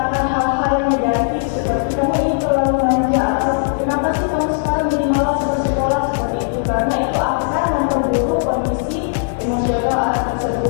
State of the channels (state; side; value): silent; right; 67 dB below the other